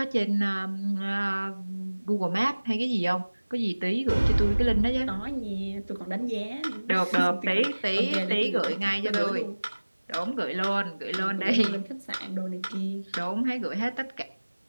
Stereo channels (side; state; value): both; inverted; correlation -1.00